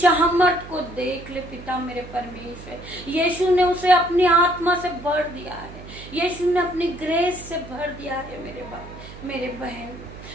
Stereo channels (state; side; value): noise; right; hum, 15 dB below the sound